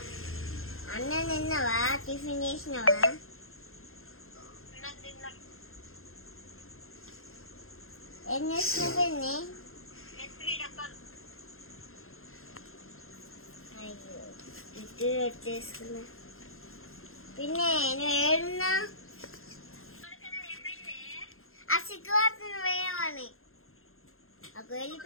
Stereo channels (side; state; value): right; late; 0.61 ms